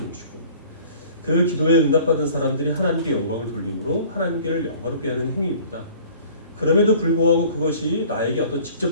것이고 그 기도에 응답받은 사람들이 하나님께 영광을 돌림으로 하나님께를 영화롭게 하는 행위입니다. 그럼에도 불구하고 그것이 나에게 어떤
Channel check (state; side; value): inverted; both; correlation -0.49